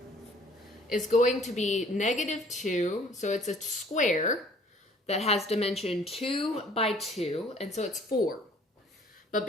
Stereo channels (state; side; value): normal; both; correlation 0.55